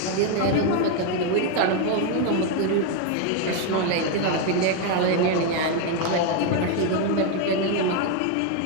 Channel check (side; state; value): both; different; correlation 0.01